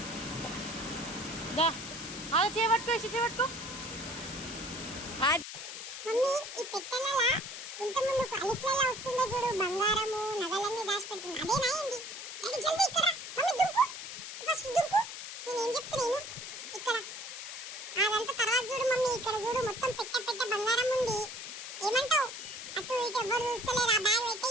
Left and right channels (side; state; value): left; noise; hiss, 9 dB below the sound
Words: అలా చేపట్టుకో, చేపట్టుకో. మమ్మీ ఈ పెట్టెలలో ఇంత ముందు అలిఫ్లలో వస్తుందో చూడు, బంగారము నగలన్నీ దాచిపెడుతుంది, అదేనా ఏంది? డాడీ జల్దీ ఇక్కడ మమ్మీ దుంకు. ఫస్ట్ ఇక్కడ చూడు మొత్తం పెట్ట పెట్ట బంగారం ఉంది. ఏమంటావు? అటు ఇటు ఎవరు చూస్తలేరు. ఆ బ్యాగ్ అయితే